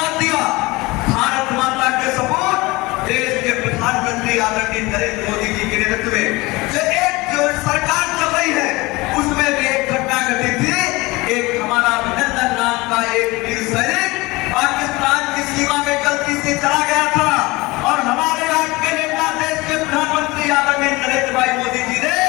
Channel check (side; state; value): right; quieter; 22.4 dB